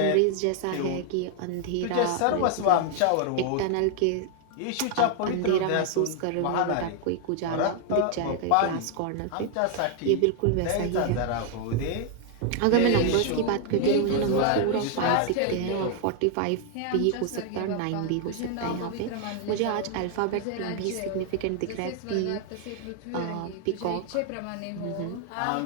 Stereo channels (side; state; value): both; different; correlation 0.00